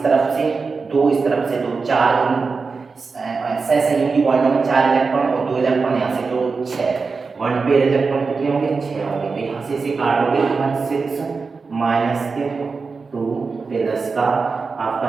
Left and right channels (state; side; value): quieter; left; 4.6 dB